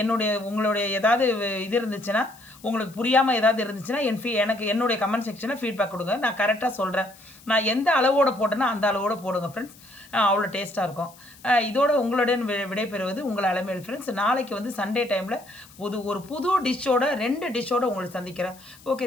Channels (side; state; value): left; noise; hiss, 24 dB below the sound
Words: உங்களுடைய ஏதாவது இது இருந்துச்சுன்னா, உங்களுக்கு புரியாமல் ஏதாவது இருந்துச்சுன்னா எனக்கு என்னுடைய கமெண்ட் செக்ஷனில் ஃபீட்பேக் கொடுங்க. நான் கரெக்டாக சொல்கிறேன். நான் எந்த அளவோடு போட்டேன்னா அந்த அளவோடு போடுங்க ஃப்ரெண்ட்ஸ். அவ்வளோ டேஸ்ட்டாக இருக்கும். இதோட உங்களுடன் விடைபெறுவது உங்கள் அலமேல் ஃப்ரெண்ட்ஸ். நாளைக்கு வந்து சண்டே டைமில் ஒரு புது டிஷ்ஷோட 2 டிஷ்ஷோடு உங்களை சந்திக்கிறேன். ஓகே